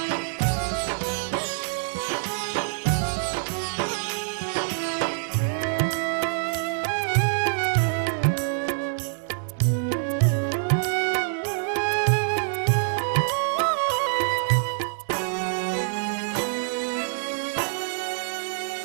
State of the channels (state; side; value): silent; left; 61 dB below the other